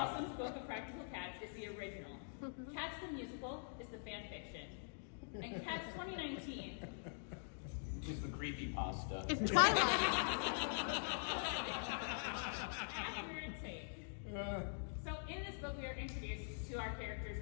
Possum's Book of Practical Cats is the original. Cats the musical is the fan fiction. And Cats 2019 Just the creepypasta. it's Twilight. accurate take. So in this book we are introduced to our characters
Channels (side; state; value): right; silent; digital silence